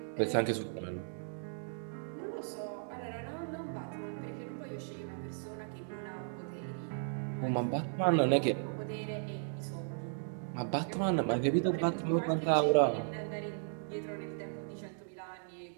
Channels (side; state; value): left; silent; digital silence